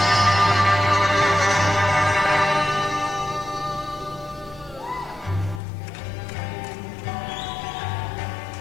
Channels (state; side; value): drops out; right; at 5.6 s